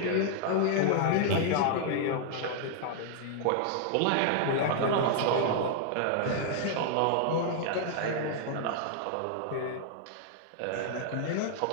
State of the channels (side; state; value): both; different; correlation -0.01